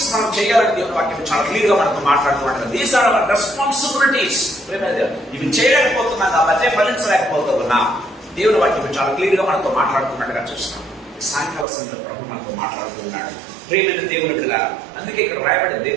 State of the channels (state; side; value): drops out; left; at 11.7 s